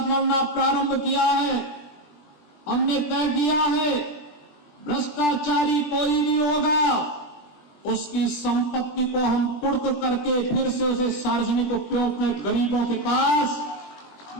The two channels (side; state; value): right; late; 20 ms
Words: लड़ना प्रारंभ किया है। हमने तय किया है, भ्रष्टाचारी कोई भी होगा, उसकी संपत्ति को हम कुर्क करके फिर से उसे सार्वजनिक उपयोग में गरीबों